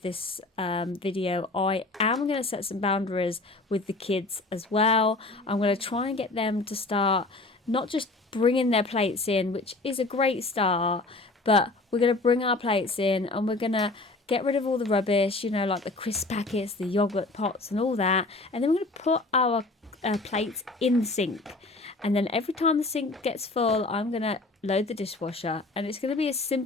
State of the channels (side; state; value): right; quieter; 3.2 dB